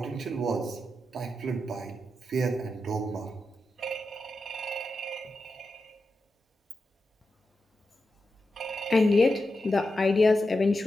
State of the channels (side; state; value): both; normal; correlation 0.89